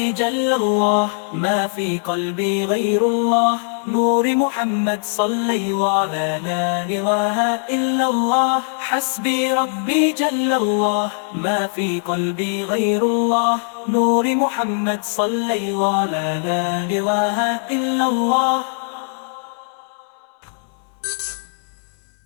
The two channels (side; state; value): right; silent; 63 dB below the other